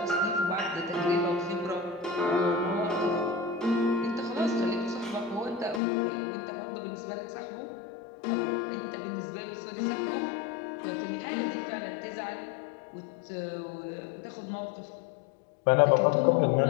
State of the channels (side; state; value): right; drops out; at 5.8 s